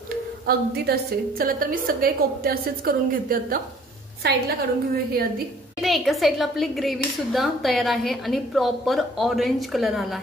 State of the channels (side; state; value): both; normal; correlation 0.56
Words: अगदी तसे। चला तर मी सगळे कोफ्ते असेच करून घेते, आता साईडला काढून घेऊया हे आधी। इथे एका साईडला आपली ग्रेव्ही सुद्धा तयार आहे आणि प्रॉपर ऑरेंज कलर आला